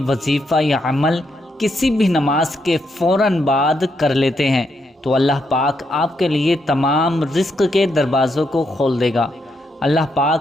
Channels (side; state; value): both; normal; correlation 0.79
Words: وظیفہ یا عمل کسی بھی نماز کے فوراً بعد کر لیتے ہیں تو اللہ پاک آپ کے لیے تمام رزق کے دروازوں کو کھول دے گا۔ اللہ